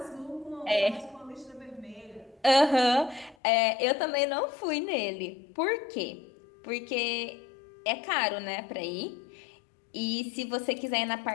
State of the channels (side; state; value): right; drops out; at 3.4 s